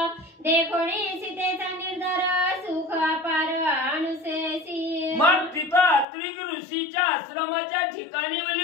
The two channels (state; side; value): drops out; right; at 6.1 s